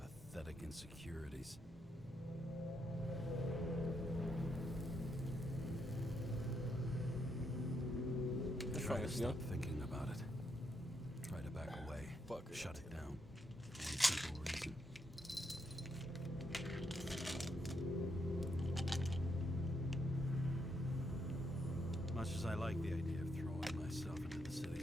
insecurities. Try to stop thinking about it. Try to back away. Shut it down. For one simple reason. Much as I like the idea of throwing myself into the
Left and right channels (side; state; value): both; normal; correlation 0.78